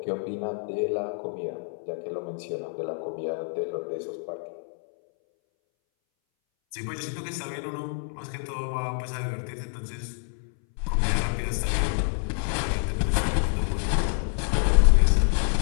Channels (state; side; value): silent; right; 60 dB below the other